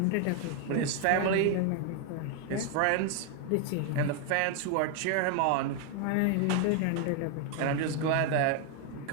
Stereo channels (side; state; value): both; different; correlation 0.01